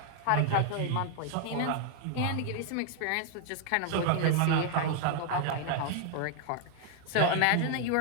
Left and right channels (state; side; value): different; both; correlation 0.00